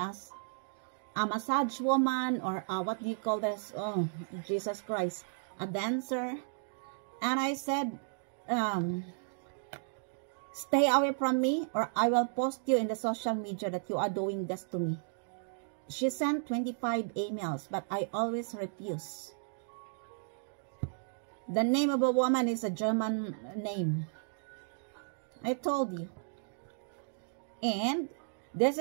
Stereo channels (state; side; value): silent; left; digital silence